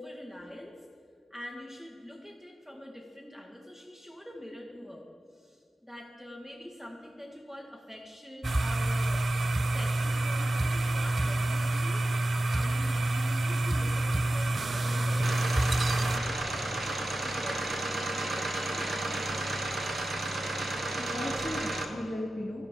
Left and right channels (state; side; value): normal; both; correlation 0.94